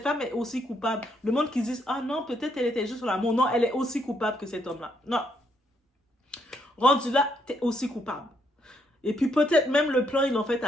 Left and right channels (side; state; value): both; normal; correlation 0.74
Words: femme est aussi coupable. Le monde qui dit, ah non, peut-être elle était juste sur l'amour. Non, elle est aussi coupable que cet homme-là. Non. Rendu là, t'es aussi coupable. Et puis peut-être même le plan, ils l'ont fait